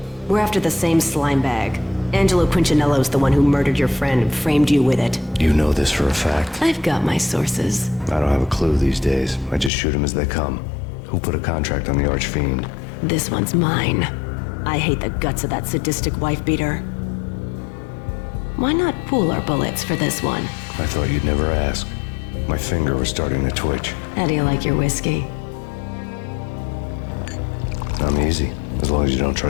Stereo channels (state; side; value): drops out; right; at 9.7 s